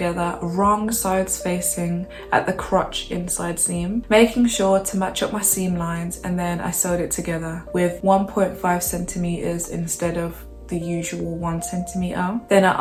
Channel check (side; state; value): both; identical; correlation 1.00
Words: wrong sides facing at the crotch inside seam, making sure to match up my seam lines, and then I sewed it together with 1.5 centimeters instead of the usual 1 centimeter. Then I